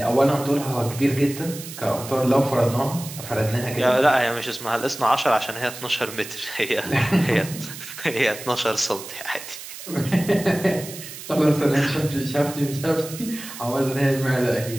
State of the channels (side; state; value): right; noise; hiss, 12 dB below the sound